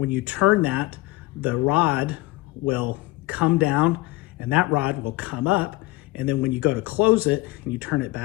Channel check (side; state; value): right; quieter; 20.4 dB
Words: you turn that, the rod will come down and that rod will come up. And then when you go to close it and you turn it